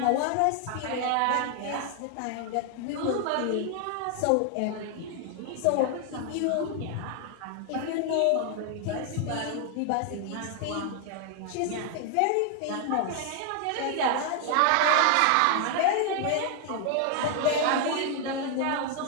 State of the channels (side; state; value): both; different; correlation 0.00